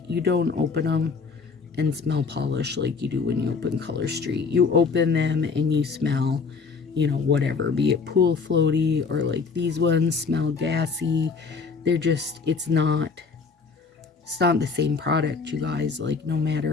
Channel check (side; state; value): right; quieter; 4.9 dB